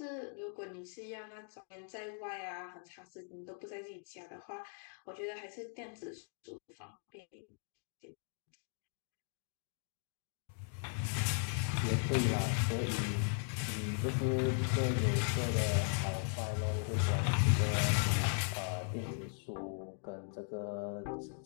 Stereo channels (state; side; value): silent; right; 52 dB below the other